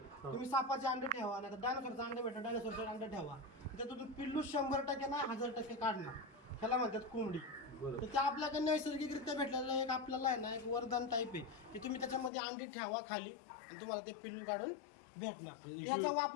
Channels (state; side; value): drops out; right; at 12.3 s